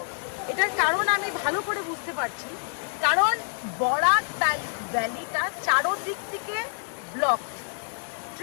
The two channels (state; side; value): silent; right; digital silence